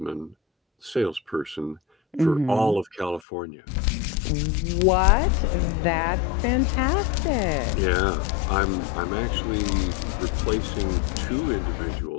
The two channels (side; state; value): right; drops out; at 3.2 s